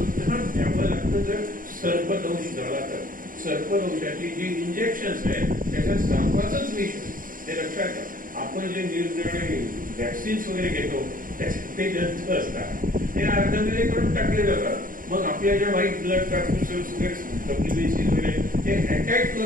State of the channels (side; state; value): left; late; 0.40 ms